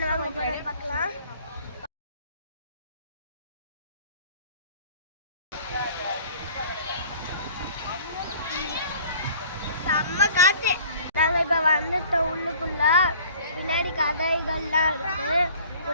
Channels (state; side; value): inverted; both; correlation -0.50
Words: வாங்க போகிறோம் பார்க்கலாம். செம்ம காற்று. நாங்கள் இப்போ வந்துட்டோம் உள்ளுக்குள்ள. பின்னாடி கதைகள்லாம் இருக்கு.